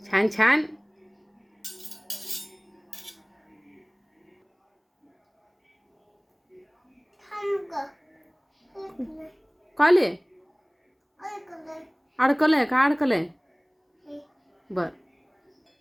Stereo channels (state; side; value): identical; both; correlation 1.00